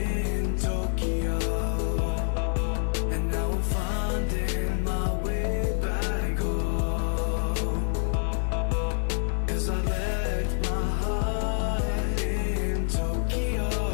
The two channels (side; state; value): right; silent; 60 dB below the other